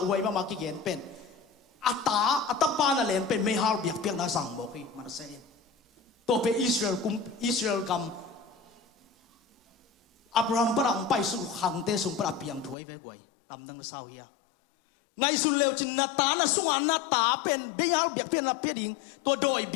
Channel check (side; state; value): right; drops out; at 12.8 s